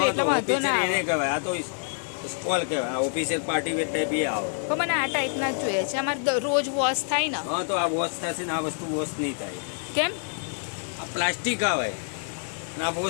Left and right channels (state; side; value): silent; right; 60 dB below the other